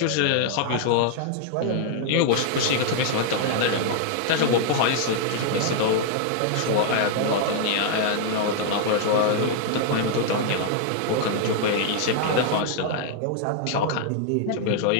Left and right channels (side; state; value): both; different; correlation 0.00